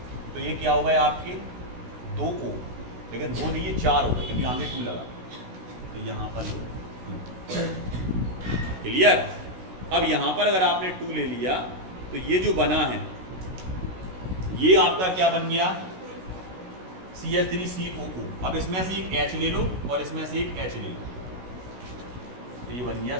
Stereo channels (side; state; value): left; late; 16 ms